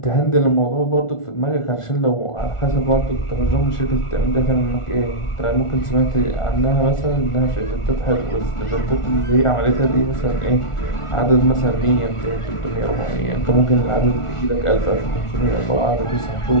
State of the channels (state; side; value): late; right; 1.4 ms